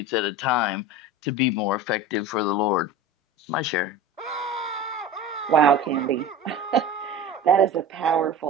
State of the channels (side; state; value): both; normal; correlation 0.33